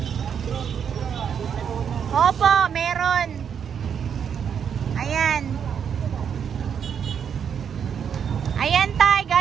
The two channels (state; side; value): quieter; left; 7.7 dB